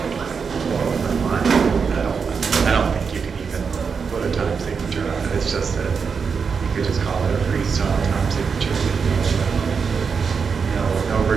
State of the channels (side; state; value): left; quieter; 5.8 dB